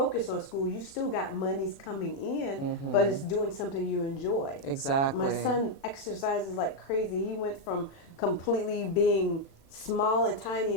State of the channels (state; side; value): late; right; 36 ms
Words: on school. You still got monies coming in, but it's doing something you enjoy. Exactly. My son exercises like crazy. He went from completely being small and tiny